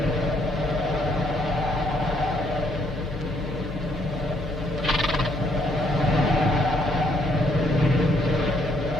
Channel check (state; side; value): noise; left; hum, 9 dB below the sound